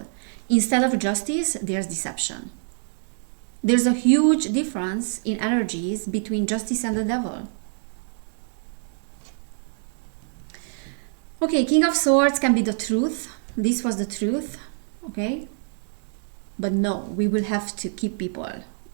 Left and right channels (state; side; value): silent; left; 57 dB below the other